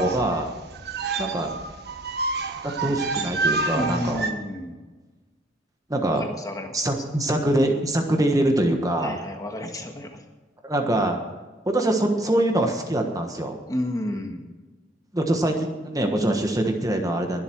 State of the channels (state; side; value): normal; both; correlation 0.63